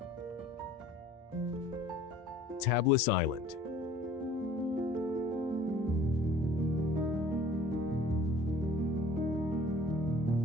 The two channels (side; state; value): both; normal; correlation 0.51